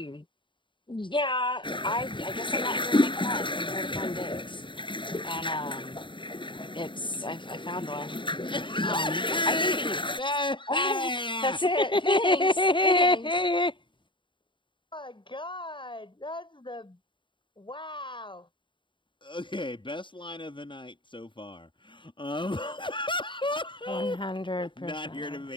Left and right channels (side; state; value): right; late; 0.23 ms